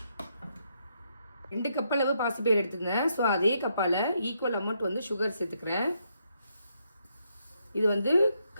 2 கப் அளவு பாசிப்பயிறு எடுத்துருந்தேன். ஸோ அதே கப்பால் ஈக்குவல் அமௌண்ட் சுகர் சேர்த்துக்கிறேன். இது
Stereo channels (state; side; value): inverted; both; correlation -0.77